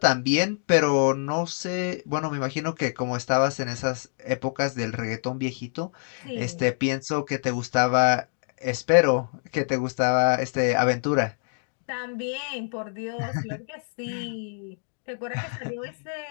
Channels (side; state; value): right; silent; digital silence